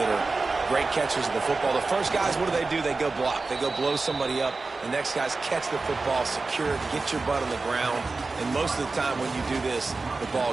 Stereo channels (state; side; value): quieter; left; 3.8 dB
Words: are great catchers of the football. The first guys, what do? They go block. They go blow somebody up. The next guys catch the football, secure it, get your butt on the ground. And most of the time when you do this, the